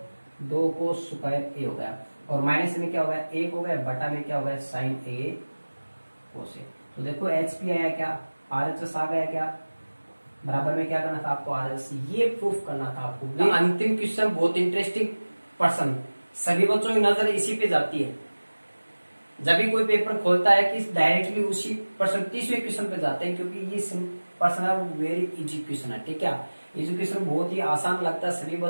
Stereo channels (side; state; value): both; inverted; correlation -1.00